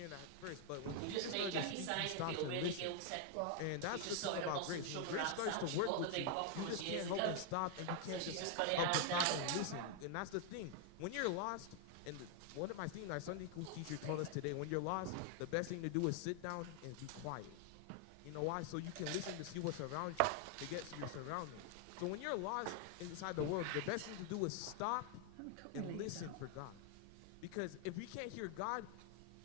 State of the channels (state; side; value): different; both; correlation 0.00